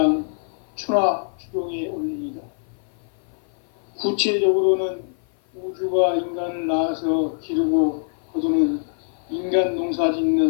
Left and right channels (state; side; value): silent; right; 55 dB below the other